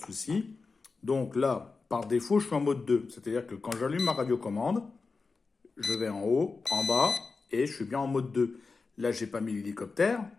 souci. Donc là, par défaut, je suis en mode 2. C'est-à-dire que quand j'allume ma radiocommande, je vais en haut, en bas, et je suis bien en mode 2. Là, j'ai pas mis l'hélicoptère,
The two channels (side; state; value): right; quieter; 4.3 dB